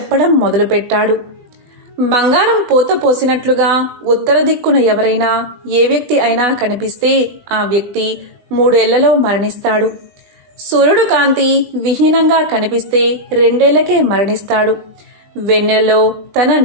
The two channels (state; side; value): late; left; 20 ms